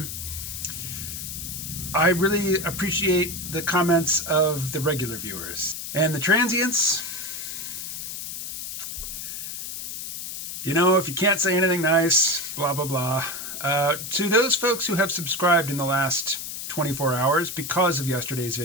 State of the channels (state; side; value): noise; left; hiss, 7 dB below the sound